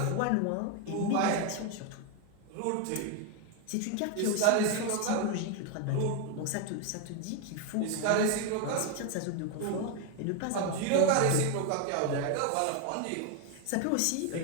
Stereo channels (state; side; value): different; both; correlation 0.02